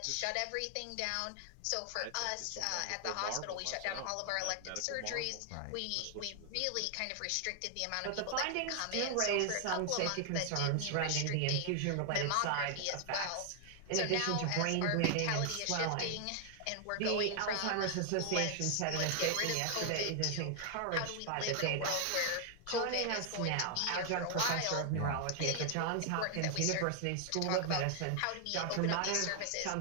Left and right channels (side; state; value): both; different; correlation 0.00